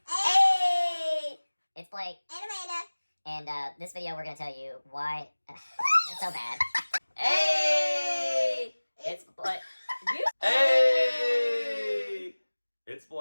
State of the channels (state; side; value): inverted; both; correlation -1.00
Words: Hey! It's Blake. And Amanda. And this video we're going to tell you why... it's so bad. Hey! It's Blake. Hey! It's